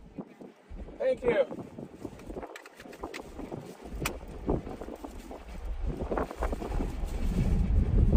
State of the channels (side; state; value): both; identical; correlation 1.00